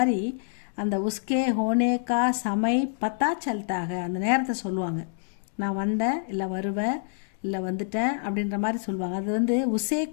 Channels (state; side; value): silent; right; digital silence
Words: அந்த உஸ்கே ஹோனே கா சமை பத்தா சல்தாக, அந்த நேரத்தை சொல்லுவாங்க. நான் வந்தேன், இல்லை வருவேன், இல்லை வந்துட்டேன் அப்படின்ற மாதிரி சொல்லுவாங்க. அது வந்து உசே